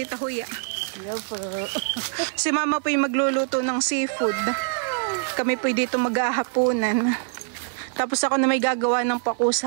Huya. Si mama po ay magluluto ng seafood. Kami po dito mag-ahaponan. Tapos ako na may gagawa ng paku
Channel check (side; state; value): left; silent; 62 dB below the other